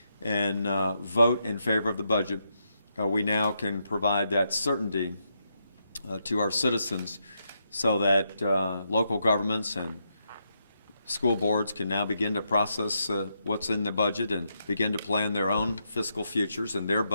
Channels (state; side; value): inverted; both; correlation -0.81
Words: and vote in favor of the budget, we now can provide that certainty to our citizens so that local governments and school boards can now begin to process what's in the budget and begin to plan their own fiscal futures and their